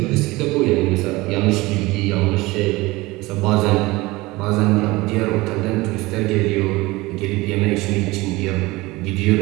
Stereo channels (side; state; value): left; quieter; 21.1 dB